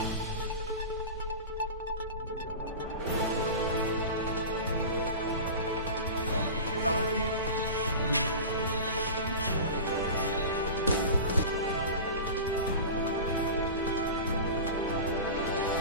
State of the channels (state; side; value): inverted; both; correlation -0.31